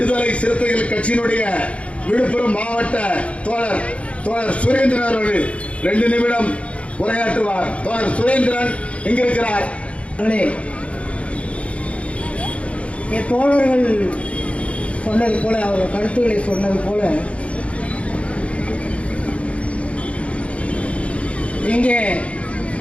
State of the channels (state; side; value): late; right; 0.063 ms